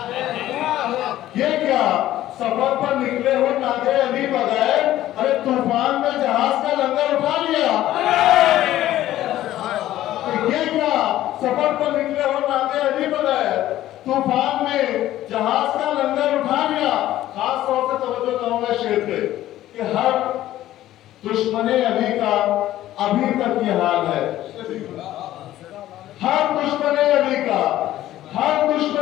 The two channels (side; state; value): right; quieter; 13.9 dB